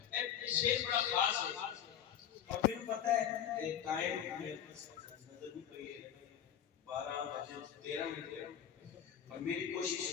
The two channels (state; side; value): quieter; right; 9.6 dB